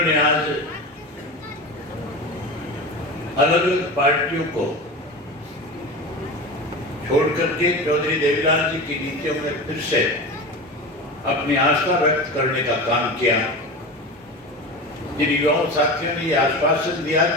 आज अलग अलग पार्टियों को छोड़ करके चौधरी देवीलाल जी की नीतियों में फिर से अपनी आस्था व्यक्त करने का काम किया। जिन युवाओं साथियों ने यह आश्वासन दिया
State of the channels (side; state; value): both; normal; correlation 0.28